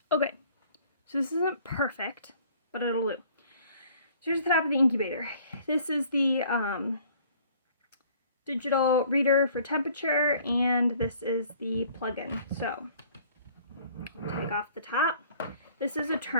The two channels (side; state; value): both; inverted; correlation -0.55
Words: Okay, so this isn't perfect, but it'll do. So here's the top of the incubator. This is the digital reader for temperature, and this is the plug-in. So take off the top. This is a